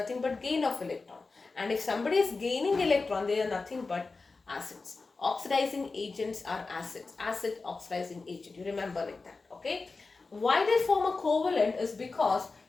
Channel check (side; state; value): right; quieter; 4.0 dB